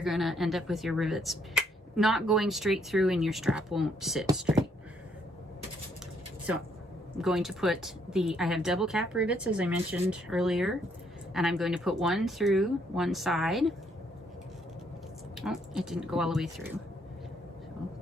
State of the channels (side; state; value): both; normal; correlation 0.70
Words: going to end up with your rivets not going straight through, and your strap won't sit straight. So I'm going to put I have double cap rivets, as I mentioned earlier, and I'm going to put one through one side. Oh, it didn't go all the way through. So I'll